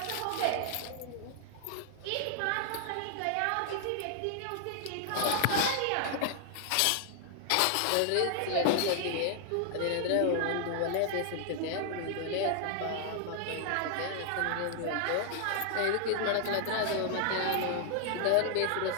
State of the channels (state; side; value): different; both; correlation 0.00